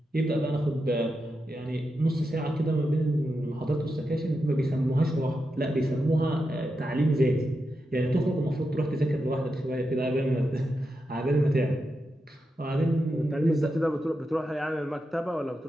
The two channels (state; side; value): normal; both; correlation 0.87